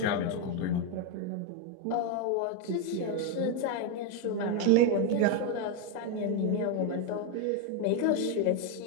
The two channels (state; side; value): different; both; correlation 0.01